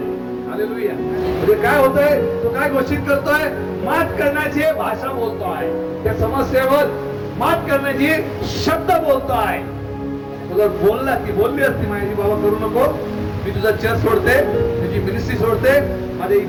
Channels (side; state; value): both; identical; correlation 1.00